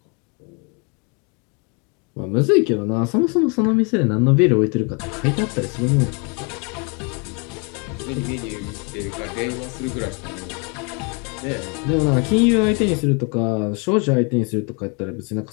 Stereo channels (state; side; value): quieter; right; 33.6 dB